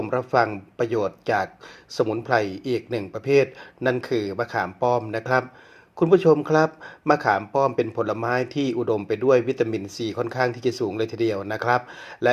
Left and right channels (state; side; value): identical; both; correlation 1.00